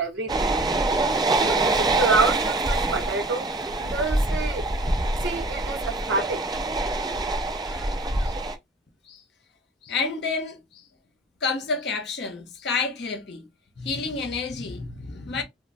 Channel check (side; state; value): both; normal; correlation 0.43